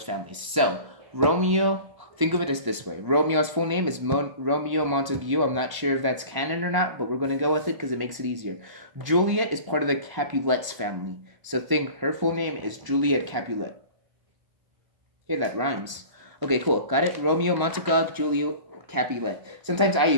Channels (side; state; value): left; late; 1.0 ms